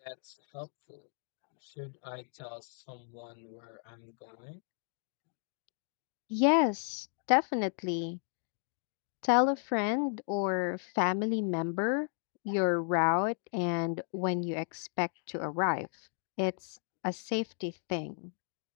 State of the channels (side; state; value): right; silent; digital silence